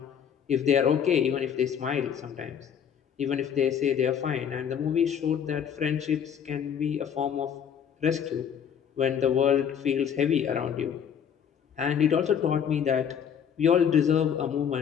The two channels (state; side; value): quieter; right; 8.2 dB